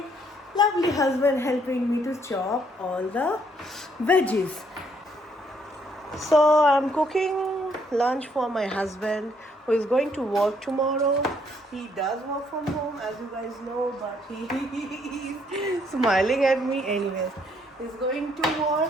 lovely husband helping me to chop all the veggies. So I'm cooking lunch for my husband who is going to work tomorrow. He does work from home, as you guys know, but he is smiling at me anyways. He's going to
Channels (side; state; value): both; normal; correlation 0.69